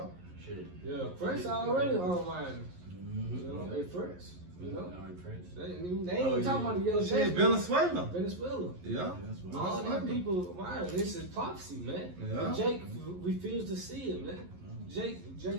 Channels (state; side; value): late; left; 11 ms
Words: Shit. Yeah, French already online. You know, they French. You know? In France. They ain't talking about the yellow Shit, jackets. Venezuela. Yeah. All these people, wow, this is prophecy, man. Yeah. And Jake refused to see it, man. Jake